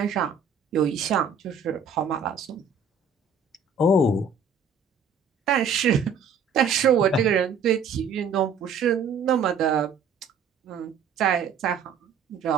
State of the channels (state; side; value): quieter; left; 5.3 dB